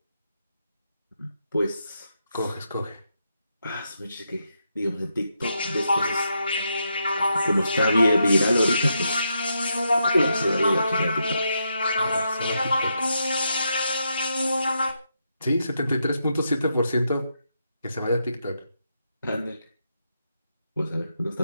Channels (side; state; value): both; inverted; correlation -0.82